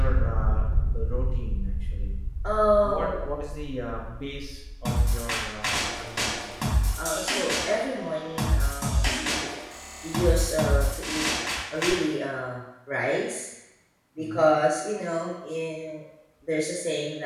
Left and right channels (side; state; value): both; identical; correlation 1.00